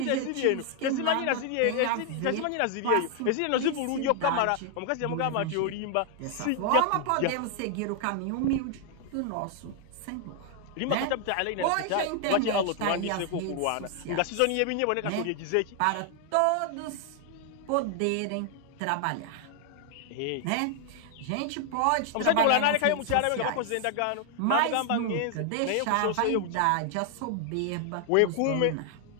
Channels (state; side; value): different; both; correlation 0.00